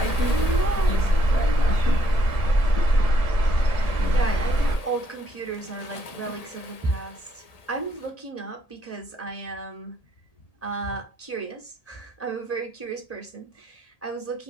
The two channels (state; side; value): late; right; 1.8 ms